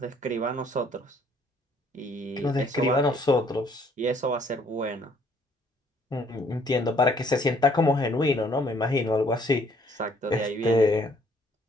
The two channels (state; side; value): normal; both; correlation 0.63